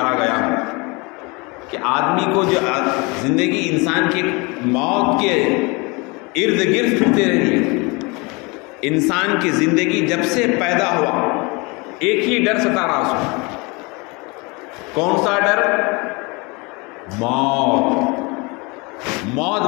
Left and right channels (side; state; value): right; quieter; 27.6 dB